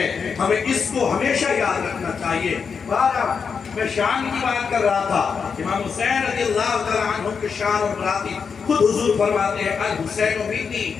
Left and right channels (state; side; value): quieter; right; 5.9 dB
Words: ہمیں اس کو ہمیشہ یاد رکھنا چاہیے۔ میں شان کی بات کر رہا تھا، امام حسین رضی اللہ تعالیٰ عنہ کے شان اور براتی خود حضور فرماتے ہیں الحسین منی